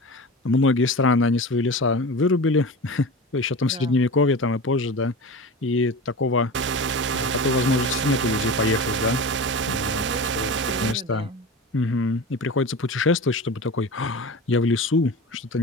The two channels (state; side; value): normal; both; correlation 0.30